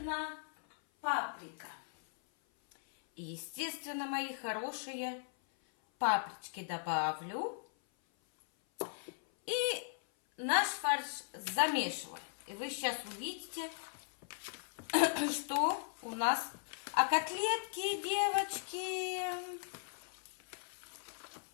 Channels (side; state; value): right; silent; 53 dB below the other